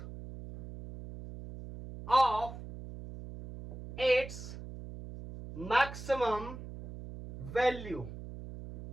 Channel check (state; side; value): noise; right; hum, 12 dB below the sound